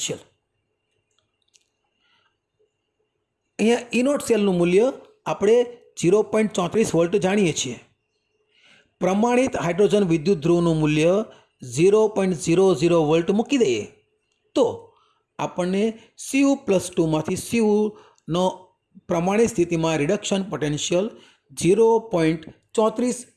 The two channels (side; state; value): both; identical; correlation 1.00